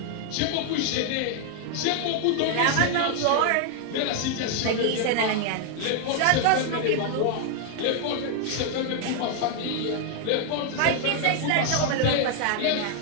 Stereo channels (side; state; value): both; different; correlation 0.00